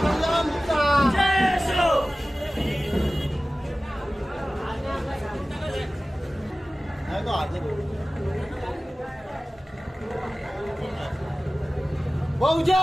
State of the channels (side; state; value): both; normal; correlation 0.97